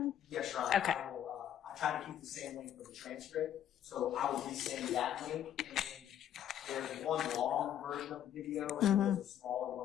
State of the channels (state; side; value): quieter; right; 10.5 dB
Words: Yes, sure. Okay. I try to keep the same link for the transcript, so I will resend that link. And then there's one long version of the video, and there's a smaller